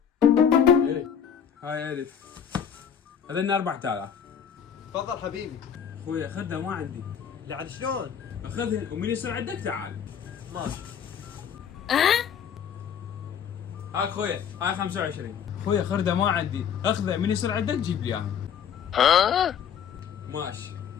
ايه هاي 1000 هذن 4000. تفضل حبيبي. اخوي خذها ما عندي. لا عاد شلون؟ اخذهن ومن يصير عندك تعال. ماشي. هاك اخويا هاي 25. اخويا خردة ما عندي، اخذه من يصير عندك جيب لي اياها. ماشي.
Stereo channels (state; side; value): quieter; right; 8.0 dB